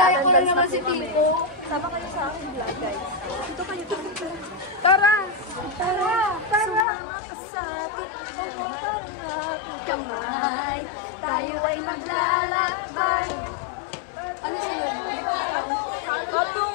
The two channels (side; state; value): right; drops out; at 6.9 s